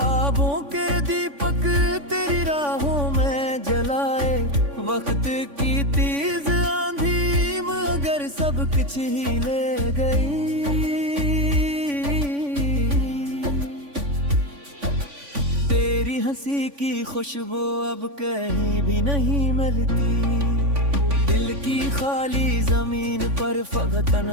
के दीपक तेरी राहों में जलाए, वक्त की तेज आंधी मगर सब सब कुछ ही ले गई। तेरी हंसी की खुशबू अब कहीं भी नहीं मिलती। दिल की खाली जमीन पर फकत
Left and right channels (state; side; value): late; left; 3.5 ms